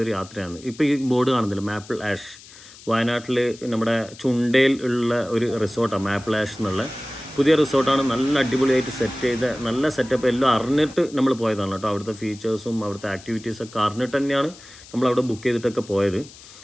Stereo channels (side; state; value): left; noise; hiss, 20 dB below the sound